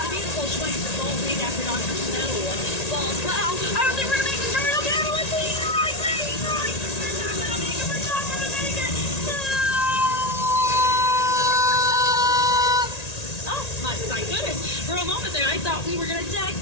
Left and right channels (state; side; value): late; right; 1.9 ms